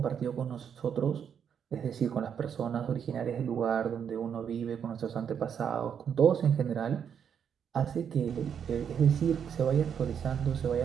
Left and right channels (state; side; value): quieter; left; 7.9 dB